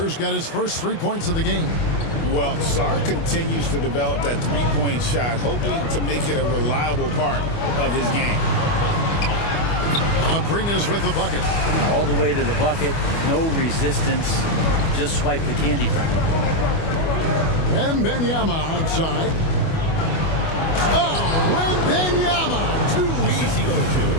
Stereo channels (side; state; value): right; late; 25 ms